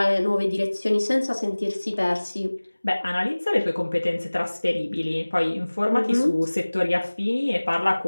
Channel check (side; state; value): both; inverted; correlation -1.00